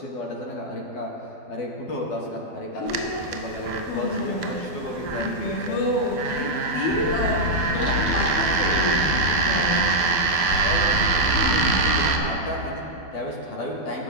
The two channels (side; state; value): right; late; 12 ms